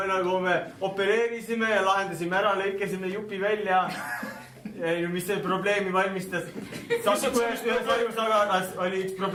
nagu me opereerisime ja lahendasime ära, lõikasime jupi välja. Mis see probleemi valmistas? Ühes ajusaganas oli üks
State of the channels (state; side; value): identical; both; correlation 1.00